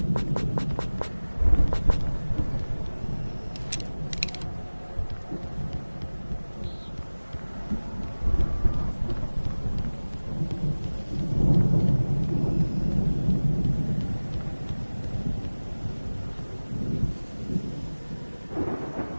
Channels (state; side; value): inverted; both; correlation -1.00